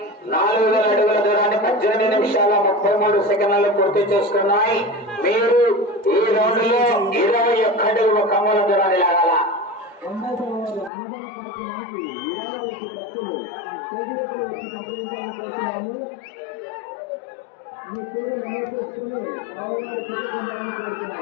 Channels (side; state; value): right; drops out; at 10.9 s